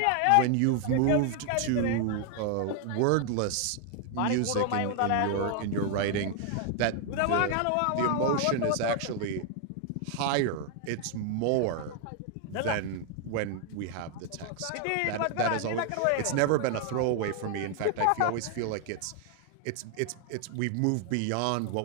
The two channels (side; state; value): both; different; correlation 0.00